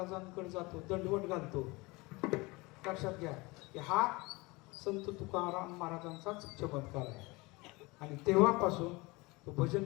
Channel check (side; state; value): right; quieter; 24.1 dB